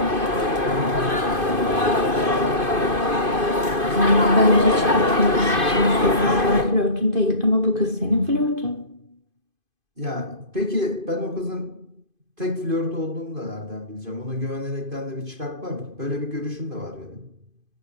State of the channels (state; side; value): late; left; 2.5 ms